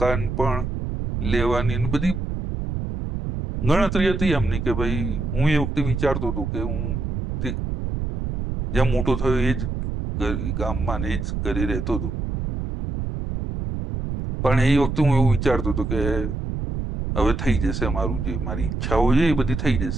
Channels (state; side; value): noise; right; rumble, 4 dB below the sound